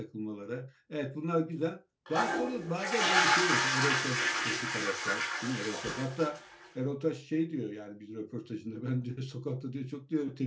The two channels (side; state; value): both; identical; correlation 1.00